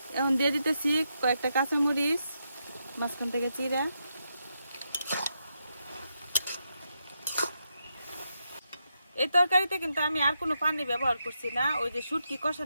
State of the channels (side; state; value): both; inverted; correlation -0.83